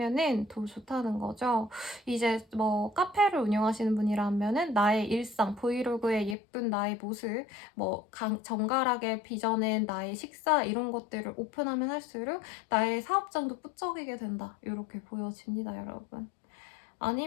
더 좋다는 거죠. 이제 뭐 카페를 운영하시는 분이라면은 나의 일상, 브이로그의 예쁜 나의 모습, 뭐 정갈하게 빚어낸 나의 식사 이런 것들을 오픈하면 할수록 나의 사업장도 뿌쩍이게 된다. 이렇게 보여집니다, 여러분.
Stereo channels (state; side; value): drops out; right; at 6.4 s